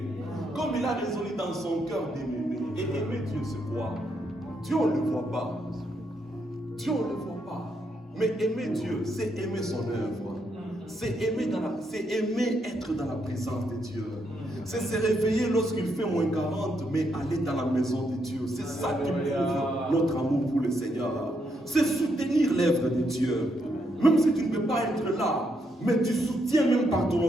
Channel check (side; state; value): both; normal; correlation 0.78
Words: comme il a résolu dans son cœur de m'aimer. Et aimer Dieu, c'est quoi? Dieu, on ne le voit pas. Dieu, on ne le voit pas. Mais aimer Dieu, c'est aimer son œuvre. C'est aimer être dans la présence de Dieu. C'est se réveiller lorsqu'il fait moins 40, mais aller dans la maison de Dieu. C'est ça qui prouve notre amour pour le Seigneur. C'est soutenir l'œuvre de Dieu. Même si tu ne peux pas être là, mais tu soutiens même par ton